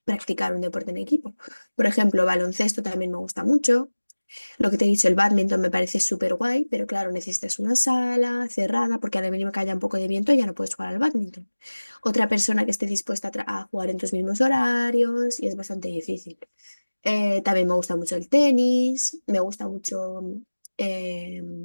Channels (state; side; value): inverted; both; correlation -1.00